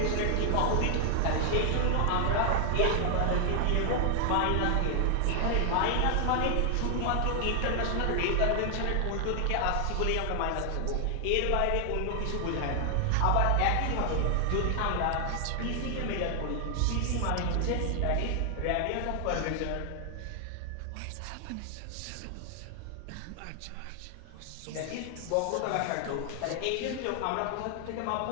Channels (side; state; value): both; different; correlation 0.00